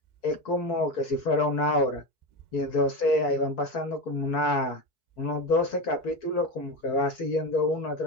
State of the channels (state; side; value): late; right; 4.6 ms